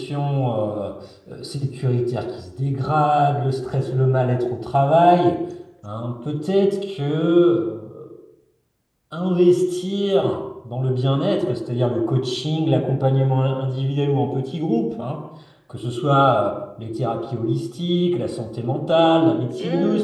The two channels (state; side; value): identical; both; correlation 1.00